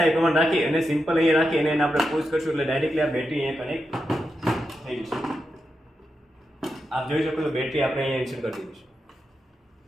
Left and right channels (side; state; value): both; normal; correlation 0.87